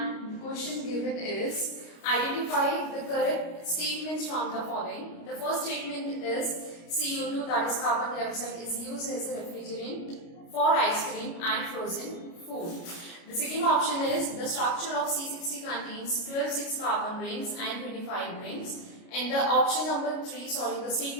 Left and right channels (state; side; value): late; right; 29 ms